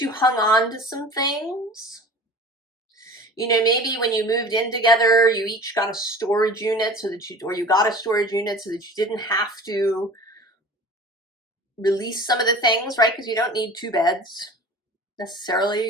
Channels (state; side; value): normal; both; correlation 0.40